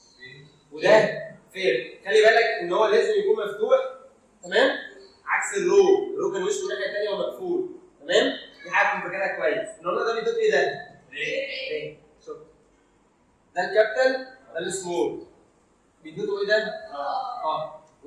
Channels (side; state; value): both; identical; correlation 1.00